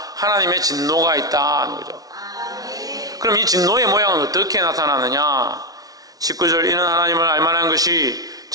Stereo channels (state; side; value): late; left; 0.18 ms